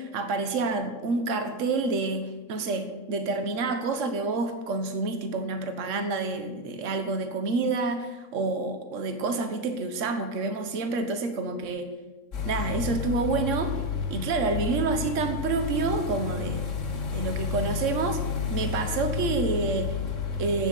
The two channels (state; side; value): late; left; 3.6 ms